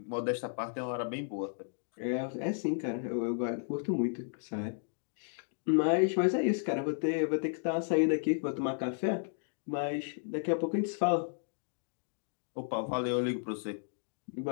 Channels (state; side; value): silent; right; digital silence